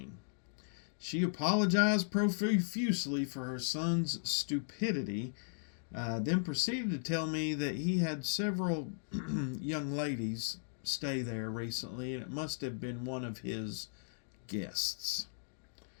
She apologized profusely for her son's stupidity, then proceeded to tell me that he had several young ladies stay there recently, and it must have been one of his guests.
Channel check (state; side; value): silent; right; digital silence